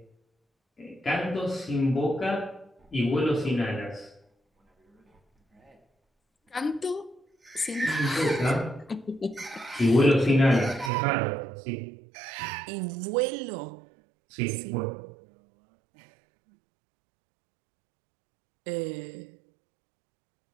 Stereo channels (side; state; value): left; drops out; at 10.9 s